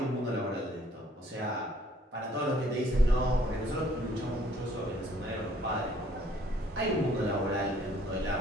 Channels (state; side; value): normal; both; correlation 0.61